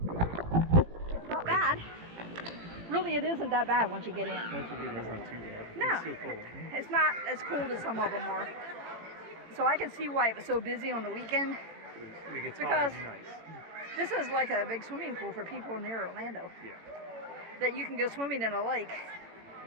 it's not bad. Really, it isn't that bad once you get in. Once you get in, it's not too bad. No, It's still cold. it's not as cold as some of them are. So I can see why it was so busy on the weekend. When it gets Because hot, it's nice. this is like a big swimming pool for people near Orlando. Yeah. That you can go swimming in a lake.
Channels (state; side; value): late; left; 18 ms